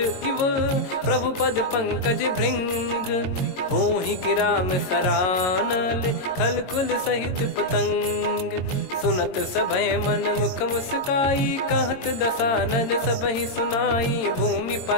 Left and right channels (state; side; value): late; right; 22 ms